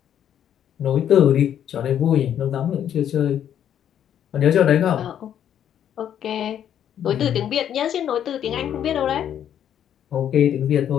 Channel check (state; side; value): quieter; right; 9.8 dB